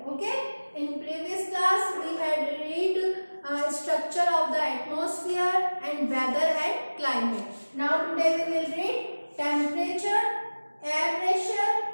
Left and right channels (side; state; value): both; inverted; correlation -1.00